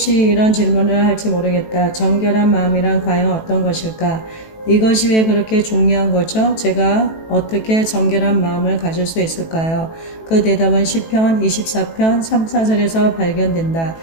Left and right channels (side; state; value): right; late; 18 ms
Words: 이런 질문을 할지 모르겠다. 정결한 마음이란 과연 어떤 것일까? 이것이 왜 그렇게 중요한 거죠? 제가 어떻게 정결한 마음을 가질 수 있을까요? 그 대답은 시편 24편 3, 4절에서 발견된다.